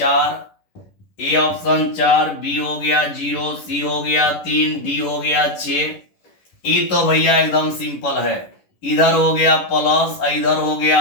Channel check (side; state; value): right; late; 11 ms